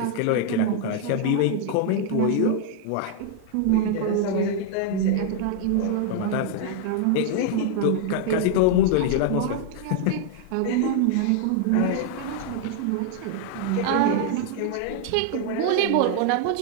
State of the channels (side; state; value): both; different; correlation 0.00